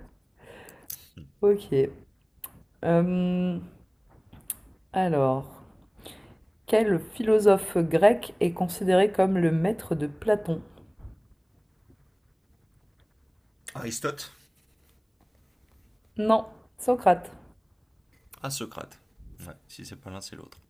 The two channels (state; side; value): identical; both; correlation 1.00